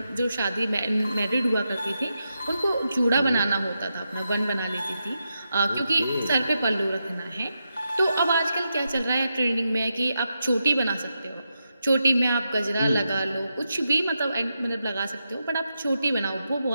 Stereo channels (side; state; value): both; inverted; correlation -0.86